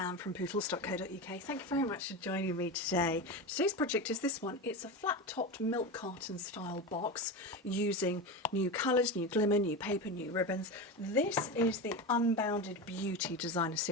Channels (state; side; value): normal; both; correlation 0.22